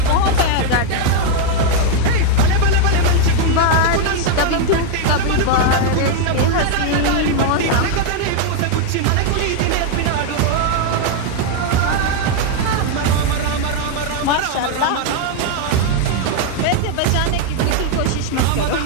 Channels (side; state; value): both; different; correlation 0.00